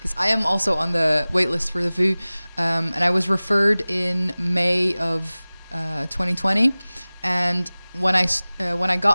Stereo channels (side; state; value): both; inverted; correlation -0.99